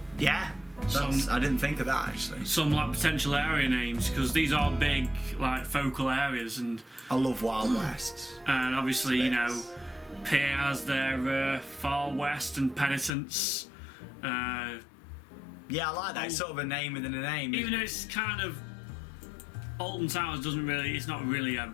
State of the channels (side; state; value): right; drops out; at 13.1 s